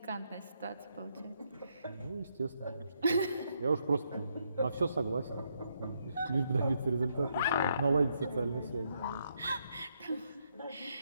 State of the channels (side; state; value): both; inverted; correlation -0.77